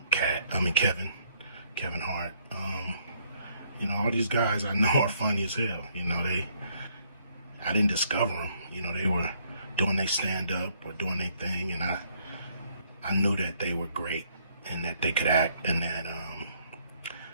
Kevin Hart. All these guys I know are funny as hell. I didn't discover them. They were doing their stand-up or doing their thing, and I knew that they were great and that they could act, and that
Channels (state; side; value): inverted; both; correlation -0.68